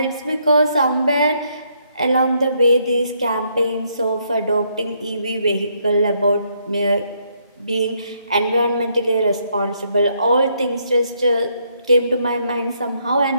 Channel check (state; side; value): inverted; both; correlation -0.73